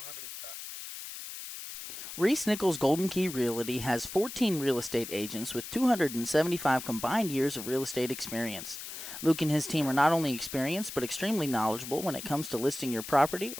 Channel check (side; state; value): left; noise; hiss, 10 dB below the sound